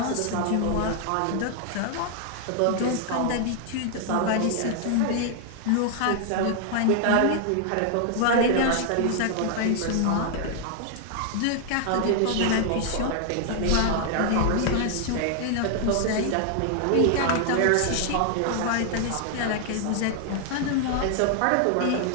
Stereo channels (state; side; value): different; both; correlation 0.00